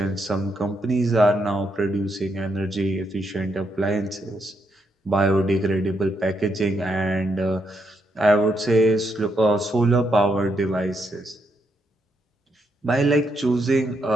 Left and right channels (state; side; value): normal; both; correlation 0.79